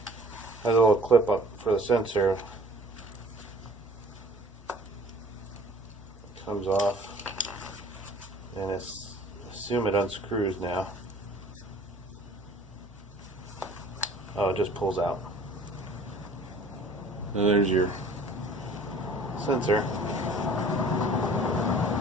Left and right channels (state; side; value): normal; both; correlation 0.50